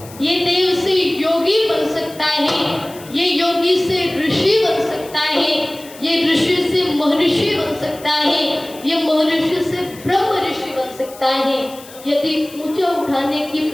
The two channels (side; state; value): left; noise; hiss, 19 dB below the sound